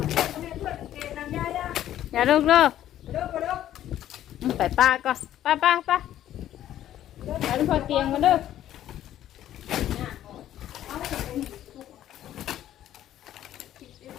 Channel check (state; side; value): quieter; right; 12.1 dB